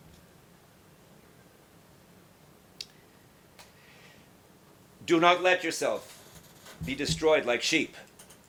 Do not let yourself be destroyed like sheep.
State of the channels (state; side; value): identical; both; correlation 1.00